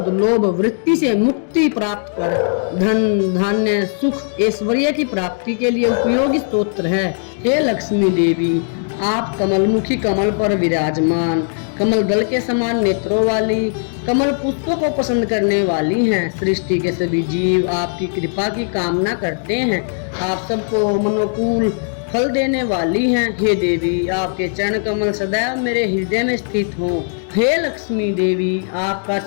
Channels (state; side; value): silent; right; digital silence